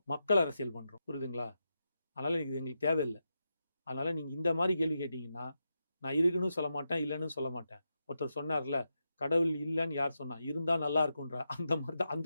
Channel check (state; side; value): inverted; both; correlation -0.86